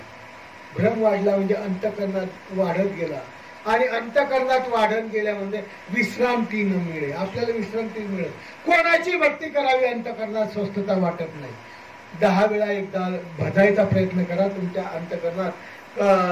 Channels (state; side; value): identical; both; correlation 1.00